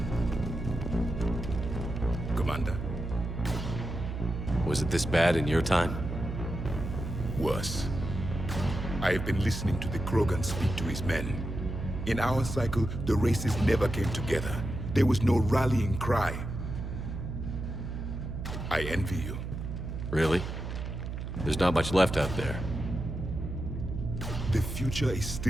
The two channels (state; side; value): noise; right; hum, 6 dB below the sound